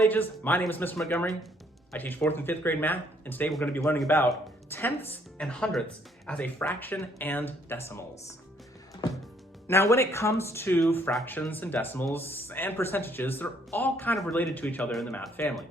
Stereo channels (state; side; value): normal; both; correlation 0.66